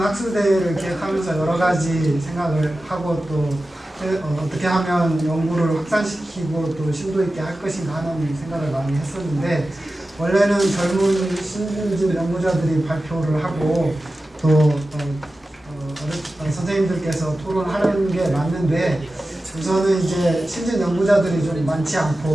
학술대회를 기획하면서 여러 가지 생각을 하고 또 어떻게 하면 연구를 확산시키고 또 심도 있게 할 것인가 하는 생각을 많이 했었는데, 원래는 젊은 신진 연구자들이 발표를 하고 또 선생님들께서 토론하는 게 맞는데, 우선은 이제 신진 연구자들이 좀 많지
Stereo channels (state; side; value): normal; both; correlation 0.94